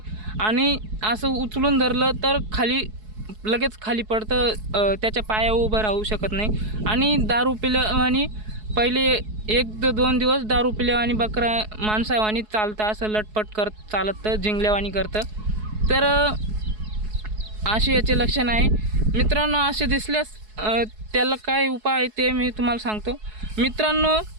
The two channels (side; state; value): left; late; 4.7 ms